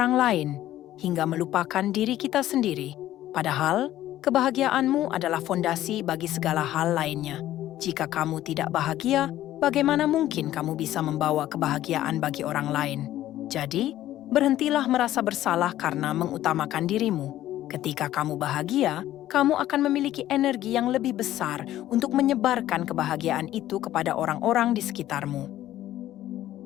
lain hingga melupakan diri kita sendiri. Padahal, kebahagiaanmu adalah fondasi bagi segala hal lainnya. Jika kamu tidak bahagia, bagaimana mungkin kamu bisa membawa kebahagiaan bagi orang lain? Jadi, berhentilah merasa bersalah karena mengutamakan dirimu. Ketika kamu bahagia, kamu akan memiliki energi yang lebih besar untuk menyebarkan kebahagiaan itu kepada orang-orang di sekitarmu.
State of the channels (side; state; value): right; quieter; 13.6 dB